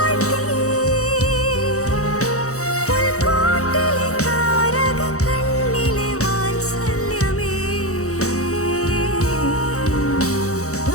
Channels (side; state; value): right; late; 0.65 ms